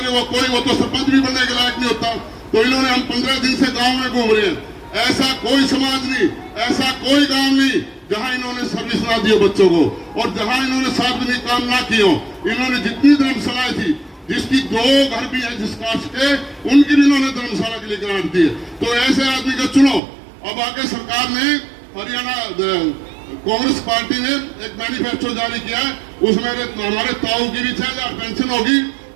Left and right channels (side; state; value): left; drops out; at 20.0 s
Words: वो तो सरपंच भी बनने के लायक नहीं होता। तो तो इन्होंने हम 15 दिन से गांव में घूम रहे हैं, ऐसा कोई समाज नहीं, ऐसा कोई गांव नहीं जहां इन्होंने सर्विस ना दी हो बच्चों को, और जहां इन्होंने सार्वजनिक काम ना किए हो। इन्होंने जितनी धर्मशालाएं थी, जिसकी 2 घर भी है जिस कास्ट के, उनकी भी इन्होंने धर्मशाला के लिए ग्रांट दी है। तो ऐसे आदमी का चुनो। अब आके सरकार ने हरियाणा कांग्रेस पार्टी ने एक मैनिफेस्टो जारी किया है, उसमें हमारे ताऊ की भी 6000 पेंशन होगी।